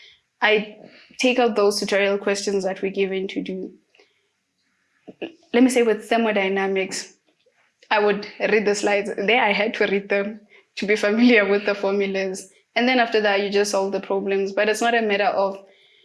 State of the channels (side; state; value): both; identical; correlation 1.00